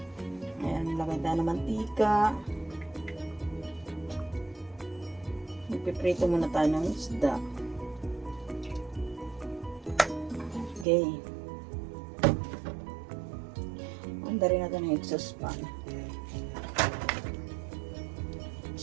Ayan, lagay tayo ng mantika. Magpiprito muna tayo ng isda. Okay. Anda rin natin ng exhaust fan.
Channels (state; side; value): drops out; left; at 10.9 s